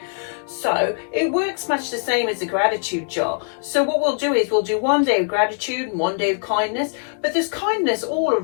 So it works much the same as the gratitude jar. So what we'll do is we'll do one day of gratitude and one day of kindness, but there's kindness all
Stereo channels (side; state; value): right; silent; 61 dB below the other